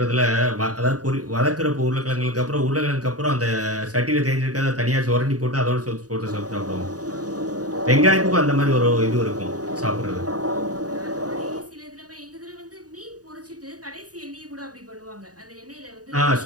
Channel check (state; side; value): late; left; 0.67 ms